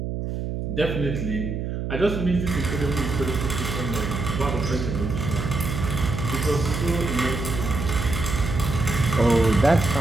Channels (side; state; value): right; noise; hum, 4 dB below the sound